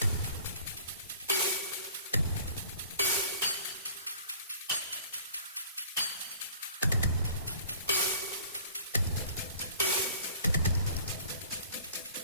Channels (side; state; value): both; inverted; correlation -0.49